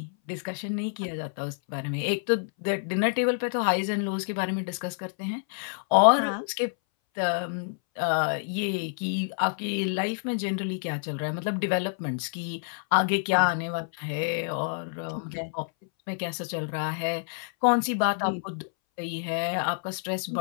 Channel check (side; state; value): right; silent; 59 dB below the other